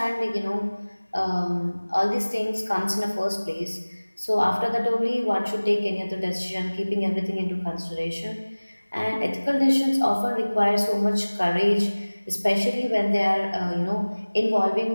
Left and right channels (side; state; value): both; inverted; correlation -1.00